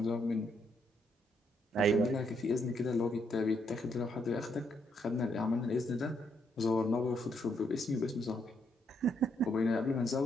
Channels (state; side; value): normal; both; correlation 0.75